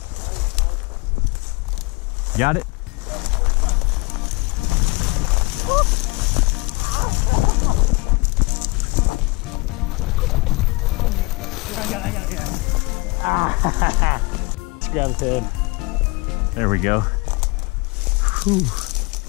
Got it? I got it. Just grab his head. There we go. Whew.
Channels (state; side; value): quieter; right; 25.0 dB